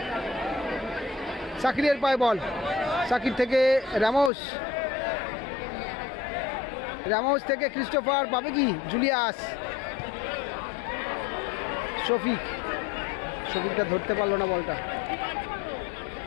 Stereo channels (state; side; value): drops out; right; at 4.3 s